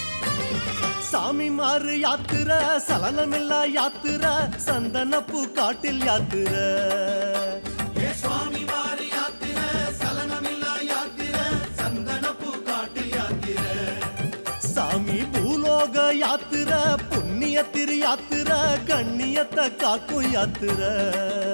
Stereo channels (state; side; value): inverted; both; correlation -1.00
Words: சாமி மாறு யாத்திர சலனமில்லா யாத்திர சந்தனப்பூ காட்டில் யாத்திர ஏ சுவாமி வாரி யாத்திர சலனமில்லா யாத்திர சந்தனப்பூ காட்டில் யாத்திர சாமி பூலோக யாத்திர புண்ணிய திரு யாத்திர கண்ணியத்தை காக்கும் யாத்திர